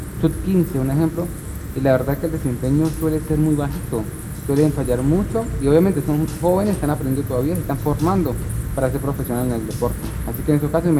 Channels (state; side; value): identical; both; correlation 1.00